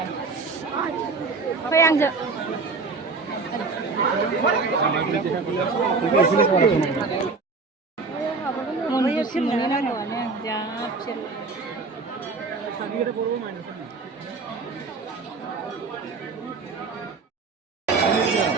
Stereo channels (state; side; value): quieter; left; 4.2 dB